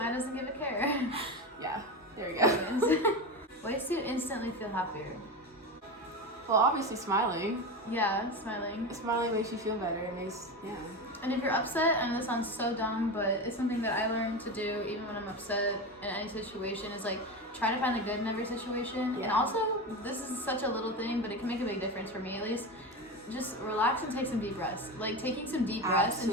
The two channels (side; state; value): both; normal; correlation 0.21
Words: doesn't give a care. Yeah, there we go. Ways to instantly feel happier. Well, obviously smiling. Yeah, smiling. Smiling makes you feel better. It makes, yeah. And if you're upset, I know this sounds so dumb, but it's something that I learned to do even when I'm upset in any situation, is like try to find the good in every situation. Yeah. And also, this is such a little thing, but it can make a big difference for me at least. Just relax and take some deep breaths. Like taking some deep breaths and